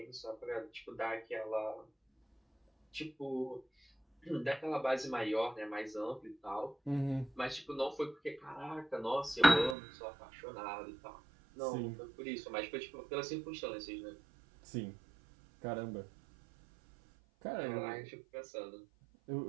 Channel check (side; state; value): left; drops out; at 9.8 s